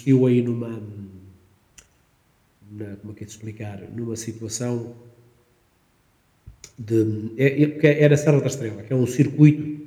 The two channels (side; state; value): both; identical; correlation 1.00